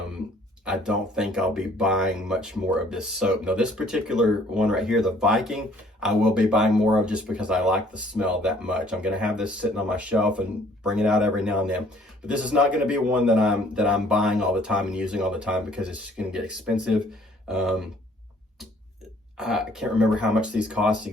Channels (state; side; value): normal; both; correlation 0.59